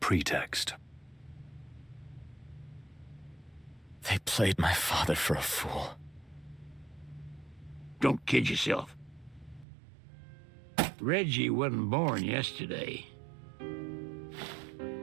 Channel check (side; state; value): left; drops out; at 9.7 s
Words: They played my father for a fool. Don't kid yourself. Reggie wasn't born yesterday.